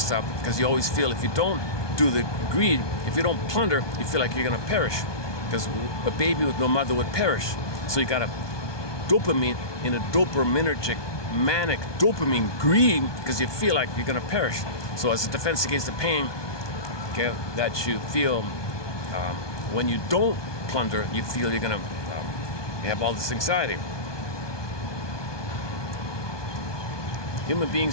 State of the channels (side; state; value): right; late; 1.2 ms